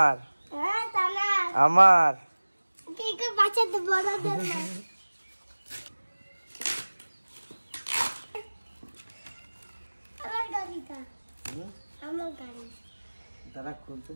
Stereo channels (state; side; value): inverted; both; correlation -1.00